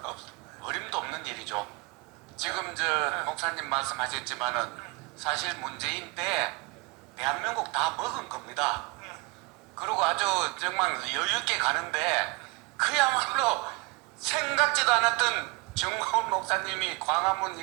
없을까? 어림도 없는 일이죠. 지금 목사님 말씀하셨지만은 사실 문재인 때 대한민국 다 먹은 겁니다. 그리고 아주 정말 여유 있게 가는데 그야말로 생각지도 않았던 정광훈 목사님이 광화문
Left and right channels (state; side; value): quieter; left; 27.7 dB